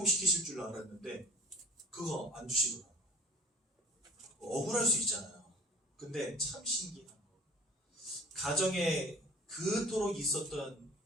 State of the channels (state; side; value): normal; both; correlation 0.48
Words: 줄 알았는데 그거 안 주시더라고요. 억울할 수 있잖아요. 근데 참 신기한 거. 가정에 그토록 있었던